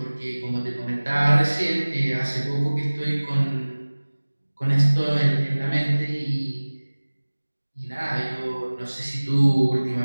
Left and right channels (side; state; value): both; inverted; correlation -1.00